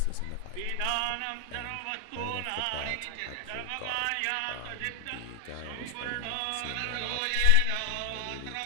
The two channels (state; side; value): different; both; correlation 0.00